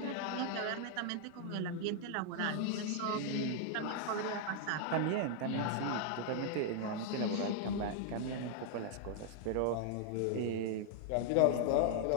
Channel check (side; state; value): both; different; correlation -0.01